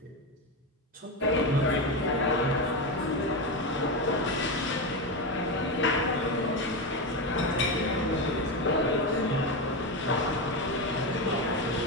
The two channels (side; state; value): both; normal; correlation 0.14